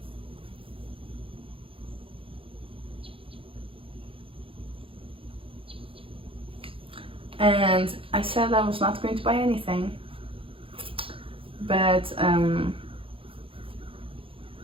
And I said I was not going to buy anything, but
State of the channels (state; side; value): late; left; 0.26 ms